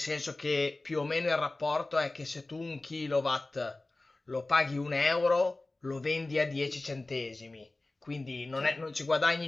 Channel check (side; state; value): right; quieter; 3.0 dB